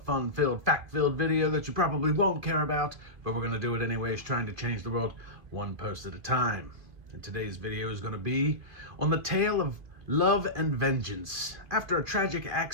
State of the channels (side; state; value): left; late; 2.5 ms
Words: fact-filled video that you probably won't care about, but we're going to do it anyways, trying to change the world one post at a time. And today's video is going to be on the tale of love and vengeance. After a tragic